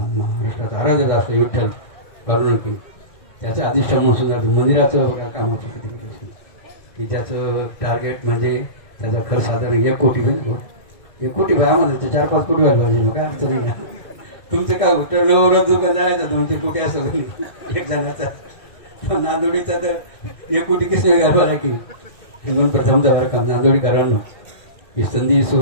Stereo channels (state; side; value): late; right; 1.6 ms